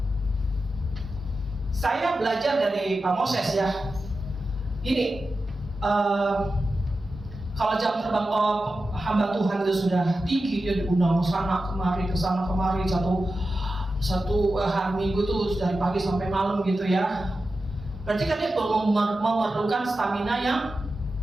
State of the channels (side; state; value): both; normal; correlation 0.92